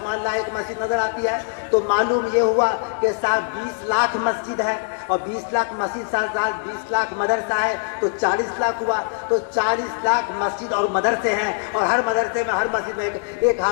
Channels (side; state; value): right; silent; digital silence